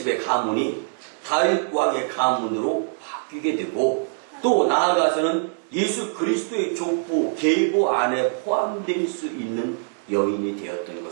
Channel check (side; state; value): left; silent; digital silence